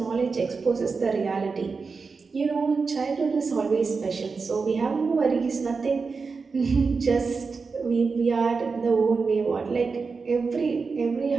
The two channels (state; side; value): quieter; left; 4.7 dB